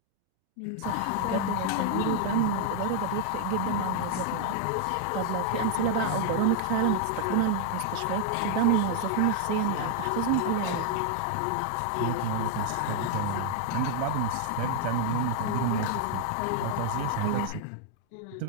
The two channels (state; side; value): different; both; correlation 0.00